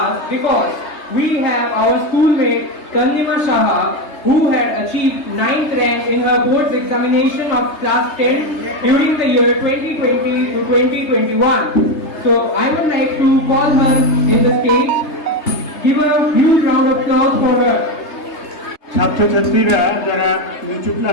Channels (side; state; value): right; late; 3.3 ms